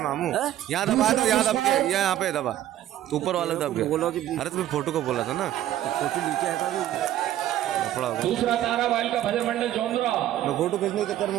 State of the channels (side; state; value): left; quieter; 12.6 dB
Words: यहाँ दबाया था, यहाँ दब के यहाँ पे दबा तो ऊपर वाला दब गया। अरे तुम्हें फोटो को बोला था ना, फोटो नीचे आया था। दूसरा ताराबाई का भजन मंडल चौंदरा मैं फोटो खींचने के चक्कर